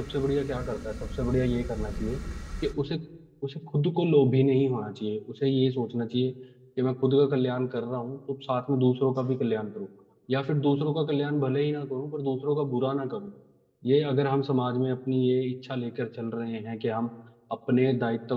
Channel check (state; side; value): identical; both; correlation 1.00